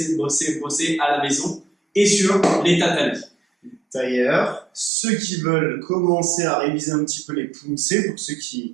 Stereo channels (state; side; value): drops out; left; at 4.9 s